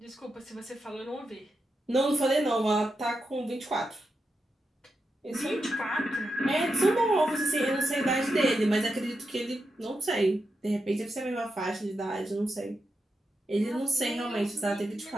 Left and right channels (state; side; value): normal; both; correlation 0.87